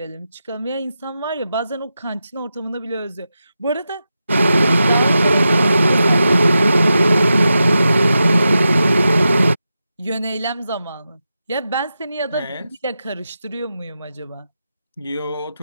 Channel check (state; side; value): inverted; both; correlation -0.90